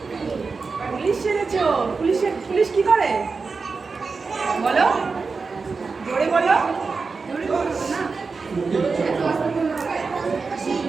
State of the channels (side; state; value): left; quieter; 4.6 dB